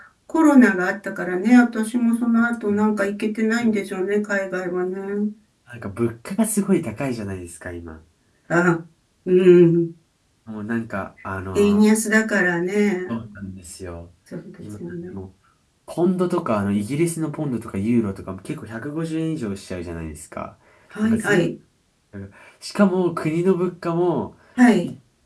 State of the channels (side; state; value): both; identical; correlation 1.00